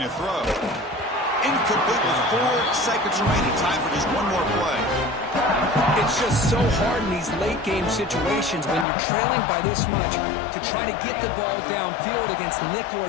to throw. Incomplete with 4 seconds remaining. Time for just one more play. It's just so hard in these late-game situations when you're trailing by this much to try to get the ball downfield against nickel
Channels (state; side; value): drops out; right; at 8.8 s